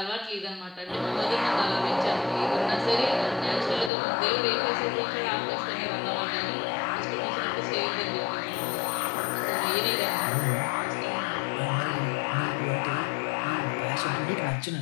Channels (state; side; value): drops out; right; at 3.9 s